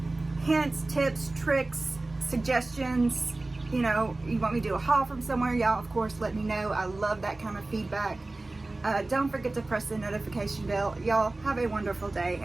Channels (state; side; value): quieter; left; 3.0 dB